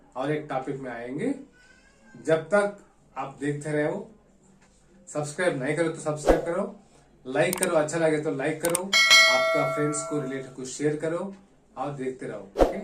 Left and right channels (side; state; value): both; identical; correlation 1.00